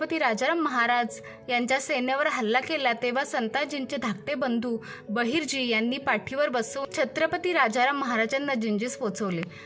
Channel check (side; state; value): both; identical; correlation 1.00